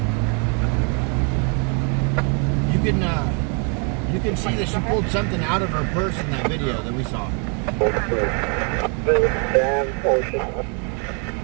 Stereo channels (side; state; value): left; quieter; 38.0 dB